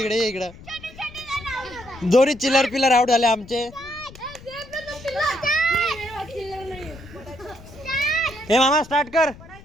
दोन्ही चिल्लर पिल्लर आउट झाले आमचे. हे मामा स्टार्ट कर.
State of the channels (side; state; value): left; noise; rumble, 19 dB below the sound